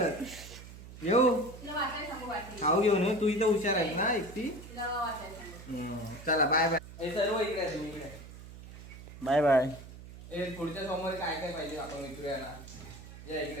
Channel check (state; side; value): noise; right; hum, 15 dB below the sound